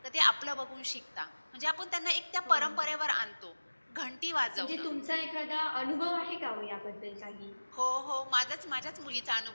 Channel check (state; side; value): inverted; both; correlation -1.00